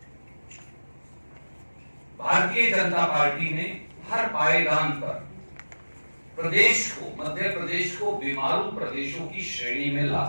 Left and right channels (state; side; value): inverted; both; correlation -1.00